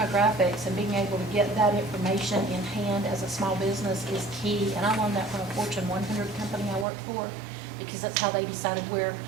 and being able to get that information in hand as a small business is key. And I learned that from a Fortune 100 company I worked for, because that's how they decided where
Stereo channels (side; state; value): left; drops out; at 6.9 s